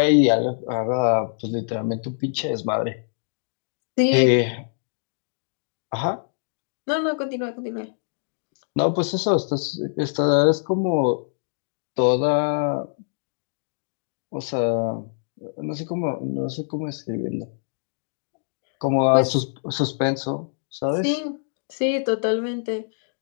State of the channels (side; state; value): right; silent; digital silence